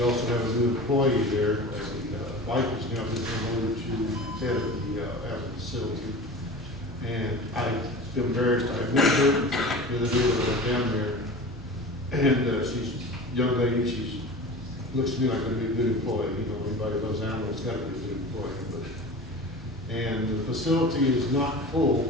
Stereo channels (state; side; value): normal; both; correlation 0.35